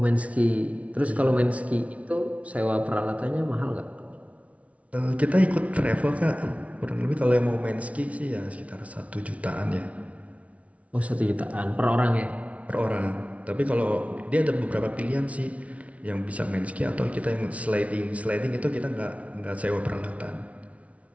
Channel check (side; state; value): left; late; 0.065 ms